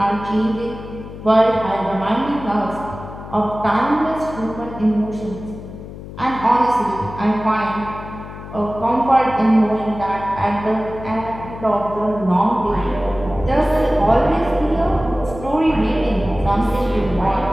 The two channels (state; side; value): noise; left; hum, 13 dB below the sound